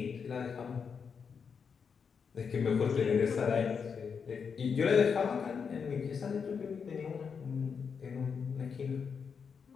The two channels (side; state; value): right; quieter; 6.2 dB